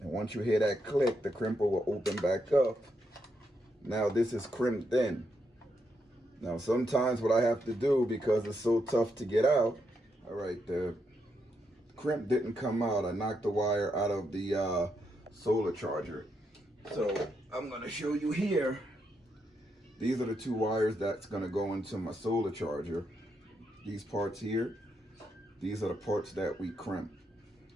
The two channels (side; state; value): both; normal; correlation 0.80